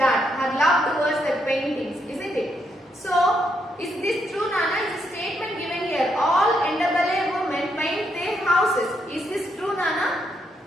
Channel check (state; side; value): normal; both; correlation 0.77